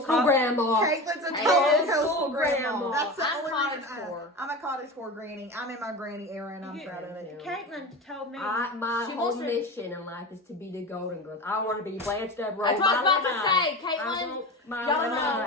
grandma. Caitlin's a total Coastal coastal grandma. grandma. That's the I'm only cottage reason core. I'm a cottage core granny. I'm in my granny era and I'm You- proud of it. Caitlin told me. My She whole wants to- mission in life is to be the Golden Girls. I want to be Blanche Devereaux. That's what I was about my to say. life. I Caitlin. want my Y'all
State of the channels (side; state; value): both; normal; correlation 0.28